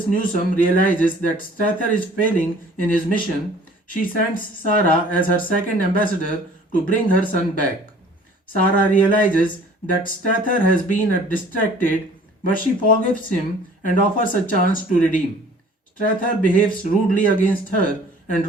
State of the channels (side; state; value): both; normal; correlation 0.51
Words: Newsom realizes that Strether is failing in his mission, she sends Sarah as her second ambassador to bring her son back. Sarah realizes that Strether has been distracted, but she forgives him and offers a chance to redeem. Strether behaves rudely against her and